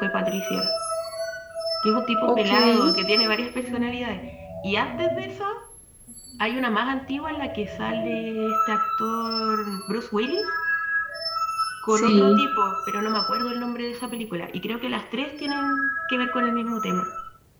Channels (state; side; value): identical; both; correlation 1.00